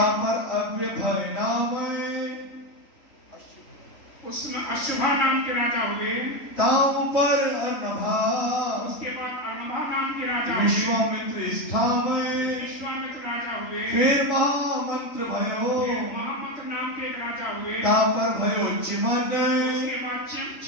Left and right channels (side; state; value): right; late; 3.9 ms